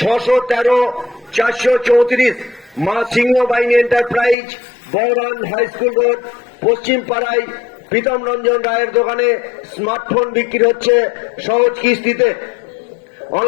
434। মা Singhabahini enterprise Bahran high school road পশ্চিম পাড়ায় প্রীতম রঞ্জন রায়ের দোকানে স্মার্টফোন বিক্রি হচ্ছে সহজ কিস্তিতে।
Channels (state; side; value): drops out; right; at 4.4 s